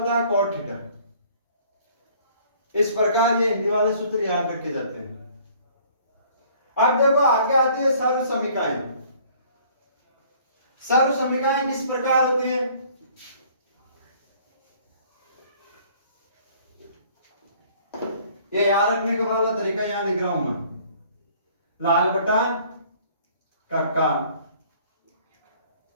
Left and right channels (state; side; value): inverted; both; correlation -0.56